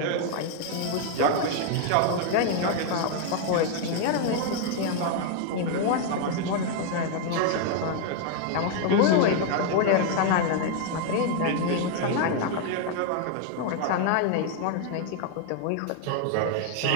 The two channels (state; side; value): different; both; correlation 0.00